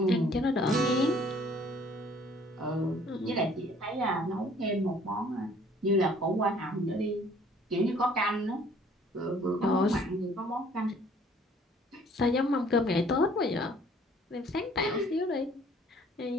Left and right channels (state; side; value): normal; both; correlation 0.57